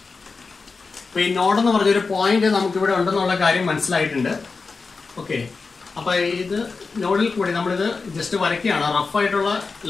അപ്പോൾ ഈ നോഡ് എന്ന് പറഞ്ഞൊരു പോയിന്റ് നമുക്കിവിടെ ഉണ്ടെന്നുള്ള കാര്യം മനസ്സിലായിട്ടുണ്ട്. ഓക്കെ, അപ്പോൾ ഇത് നോഡിൽ കൂടി നമ്മളിത് ജസ്റ്റ് വരയ്ക്കുകയാണ്. റഫായിട്ടുള്ള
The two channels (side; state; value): right; quieter; 4.4 dB